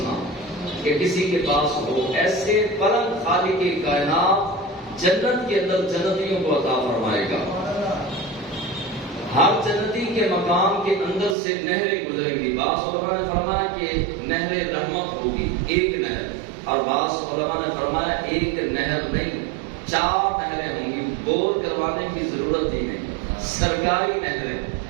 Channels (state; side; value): drops out; left; at 11.4 s